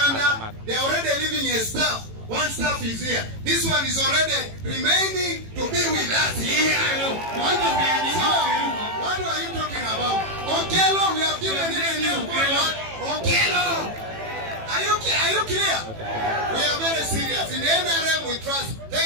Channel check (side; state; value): left; late; 18 ms